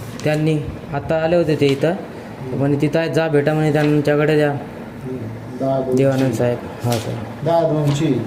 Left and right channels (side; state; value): both; identical; correlation 1.00